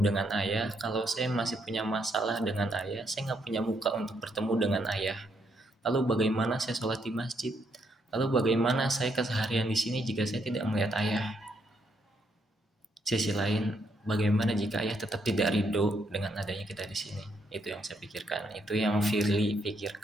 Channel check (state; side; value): normal; both; correlation 0.75